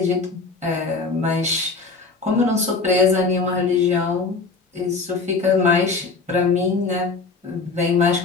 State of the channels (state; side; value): quieter; right; 4.3 dB